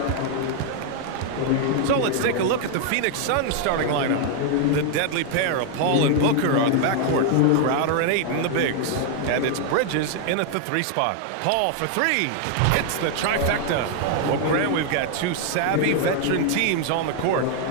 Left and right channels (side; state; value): both; different; correlation 0.00